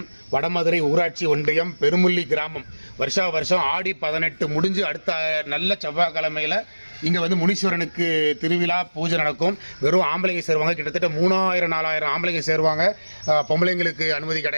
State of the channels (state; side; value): inverted; both; correlation -1.00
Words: வடமதுரை ஊராட்சி ஒன்றியம் பெருமுள்ளி கிராமம் வருஷா வருஷம் ஆடி 18 முடிஞ்சு அடுத்த நல்ல செவ்வாய்க்கிழமையில் இங்கே வந்து முனீஸ்வரனுக்கு திருவிழா பூஜை நடக்கும். வெறும் ஆம்பளைங்க சேருவாங்க. கிட்டத்தட்ட 3000-4000 ஆம்பளைங்க சேருவாங்க. பொம்பளைங்களுக்கு அனுமதி